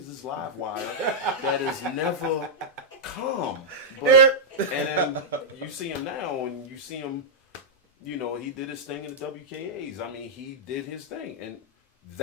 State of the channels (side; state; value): both; normal; correlation -0.09